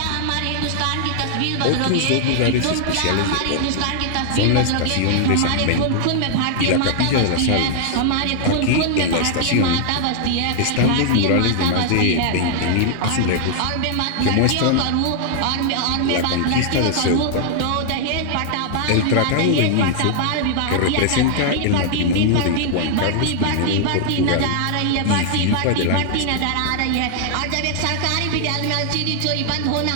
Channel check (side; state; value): both; different; correlation 0.00